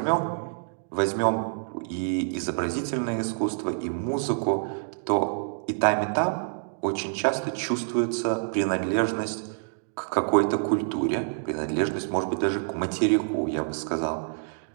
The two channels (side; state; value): left; silent; digital silence